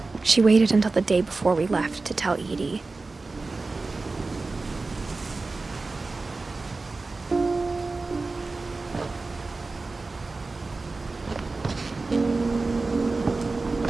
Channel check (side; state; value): left; quieter; 3.6 dB